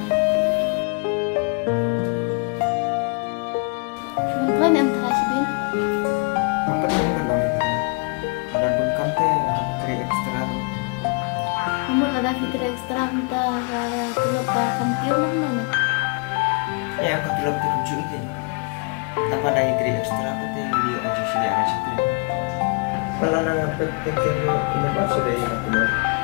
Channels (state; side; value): quieter; right; 33.4 dB